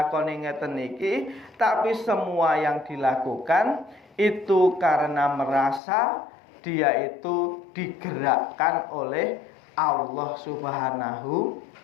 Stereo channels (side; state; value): right; drops out; at 5.8 s